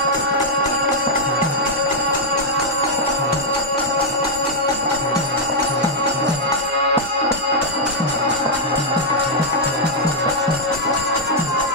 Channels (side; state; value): left; noise; hum, 28 dB below the sound